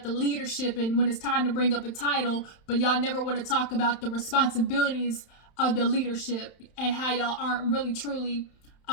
the leadership and when it's time to bring up a title, but y'all never want to talk about the responsibilities of the leadership and how y'all aren't really truly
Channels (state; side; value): late; right; 31 ms